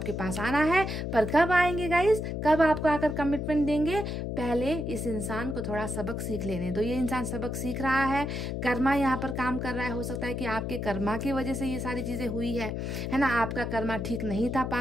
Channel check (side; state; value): left; noise; hum, 3 dB below the sound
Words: पास आना है। पर कब आएंगे गाइस, कब आपको आकर कमिटमेंट देंगे? पहले इस इंसान को थोड़ा सबक सीख लेने दो। ये इंसान सबक सीख रहा है, कर्मा यहाँ पर काम कर रहा है। हो सकता है कि आपके कर्मा की वजह से ये सारी चीजें हुई है ना। आपका कर्मा ठीक नहीं था